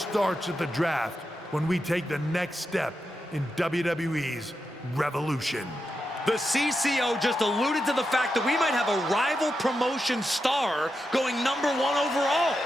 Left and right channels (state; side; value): normal; both; correlation 0.87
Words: at the draft when we take the next step in WWE's revolution. The CCO just alluded to the fact that we might have a rival promotion star going #1 overall.